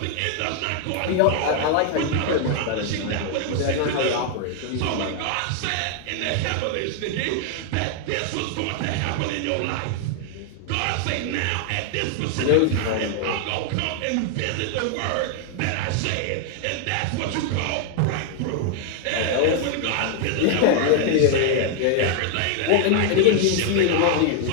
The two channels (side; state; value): both; different; correlation 0.00